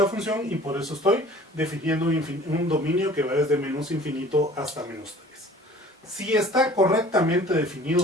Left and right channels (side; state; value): both; normal; correlation 0.48